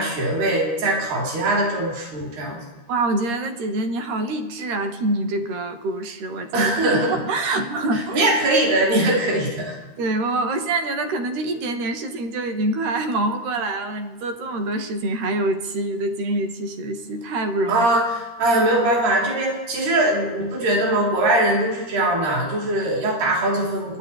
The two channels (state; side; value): late; left; 13 ms